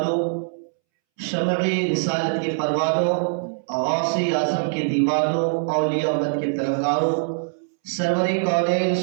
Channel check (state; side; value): silent; left; 64 dB below the other